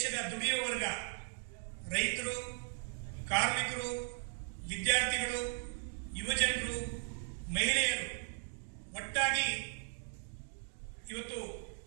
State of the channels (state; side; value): silent; left; 53 dB below the other